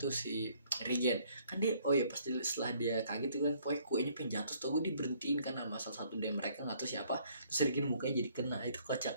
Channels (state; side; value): inverted; both; correlation -0.64